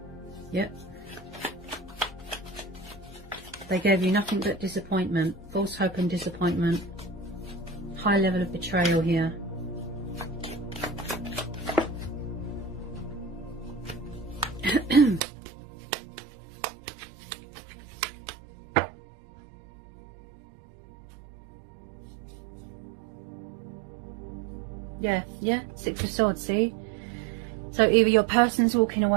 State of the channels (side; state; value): left; drops out; at 15.2 s